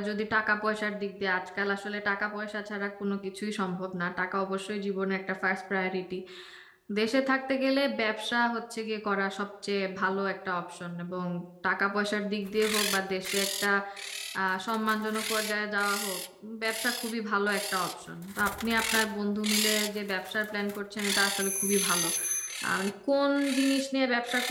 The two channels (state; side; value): identical; both; correlation 1.00